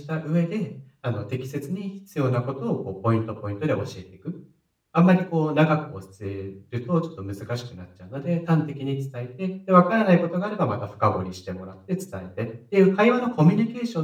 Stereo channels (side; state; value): both; identical; correlation 1.00